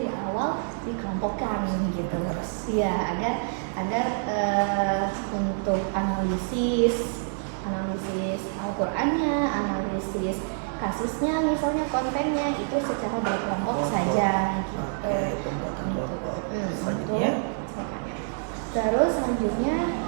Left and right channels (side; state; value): left; silent; digital silence